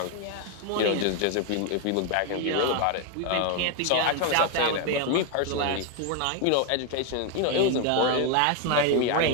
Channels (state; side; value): different; both; correlation 0.01